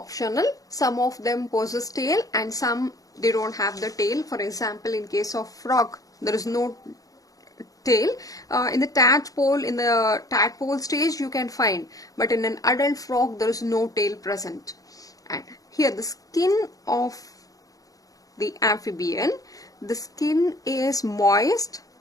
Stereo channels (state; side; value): late; right; 0.17 ms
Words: Some of them possess tail and some they don't have the tail. For example, in case of frog, there is no tail. In the tadpole stage you can find, but in an adult frog there is no tail present. And here the skin of the amphibian, the skin is moist